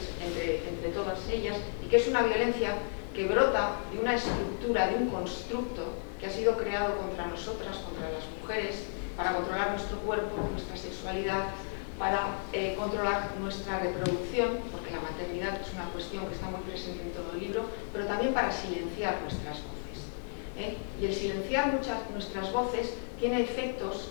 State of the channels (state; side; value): silent; right; digital silence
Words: entre todas ellas, y que es una violencia que brota de una estructura, de un constructo que ha sido creado contra nosotras, contra las mujeres, para controlar nuestro cuerpo, nuestra sexualidad, para controlar nuestra reproducción, porque la maternidad es una cuestión que está muy presente en todo el libro, pero también para silenciar nuestras voces. Y el silenciar nuestras voces tiene efectos